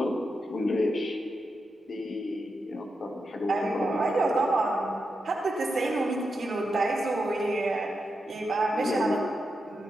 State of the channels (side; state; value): both; normal; correlation 0.87